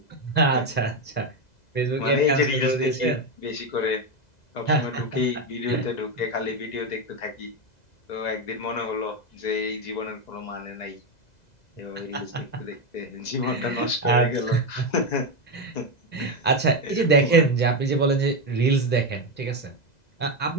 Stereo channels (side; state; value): right; late; 2.0 ms